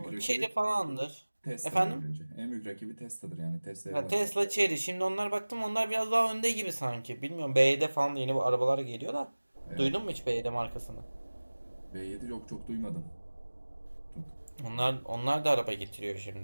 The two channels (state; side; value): inverted; both; correlation -1.00